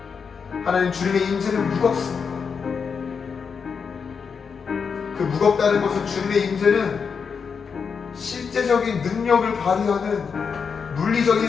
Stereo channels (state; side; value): quieter; right; 6.0 dB